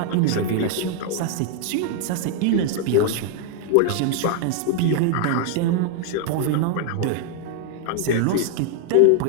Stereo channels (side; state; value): both; different; correlation 0.00